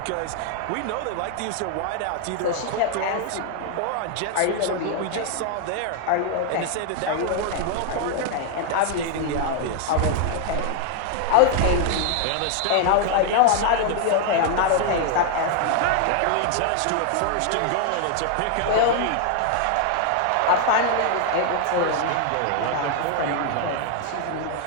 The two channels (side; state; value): both; different; correlation 0.00